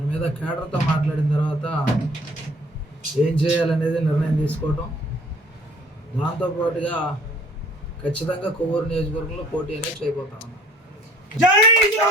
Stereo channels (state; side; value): normal; both; correlation 0.54